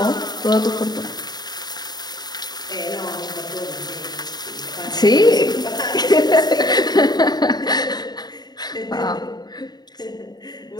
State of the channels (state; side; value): late; right; 0.20 ms